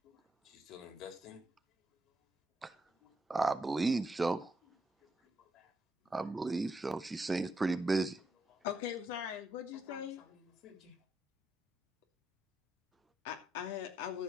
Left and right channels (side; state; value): both; normal; correlation 0.80